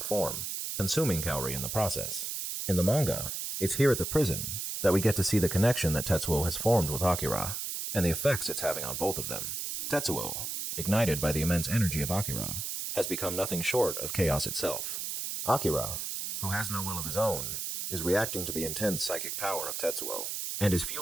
form, consuming Kaori in the process. In the manga, it's here at the prison that we get to see the connection that Tetsuo has formed with Akira, and the effects it's having on both of them. Tetsuo, ignited by the immense energy of Akira, has become nothing short of chaos itself. Akira, who has no will of his own, is reacting to the intense psychic power of Tetsuo, and is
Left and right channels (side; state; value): right; noise; hiss, 4 dB below the sound